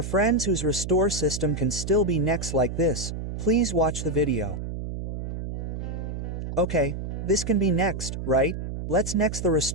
friends whose restore system can still be next like this, please watch the video. Okay, this can be next, right? Let's next the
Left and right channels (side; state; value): right; noise; hum, 5 dB below the sound